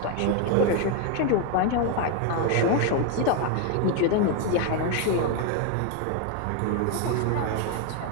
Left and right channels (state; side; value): different; both; correlation 0.01